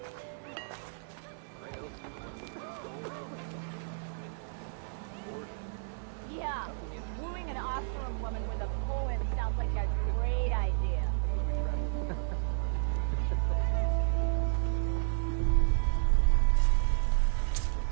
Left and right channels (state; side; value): silent; left; 56 dB below the other